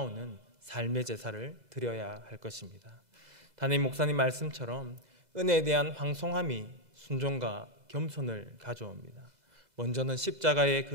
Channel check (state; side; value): late; left; 2.0 ms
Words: 삶의 제사를 드려야 할 것입니다. 담임 목사님 말씀처럼 은혜에 대한 황송함이 순종과 겸손을 가져옵니다. 먼저는 십자가의